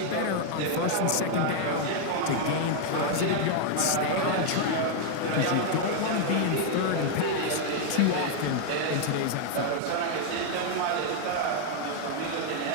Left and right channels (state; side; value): different; both; correlation 0.00